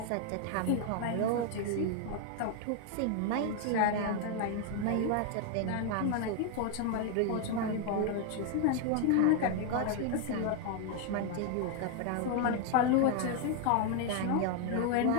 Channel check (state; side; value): different; both; correlation 0.00